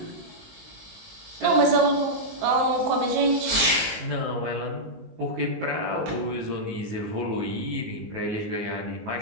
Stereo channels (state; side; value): late; left; 19 ms